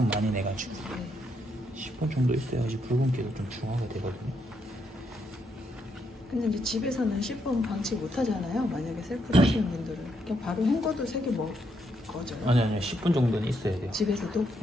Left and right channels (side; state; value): both; normal; correlation 0.77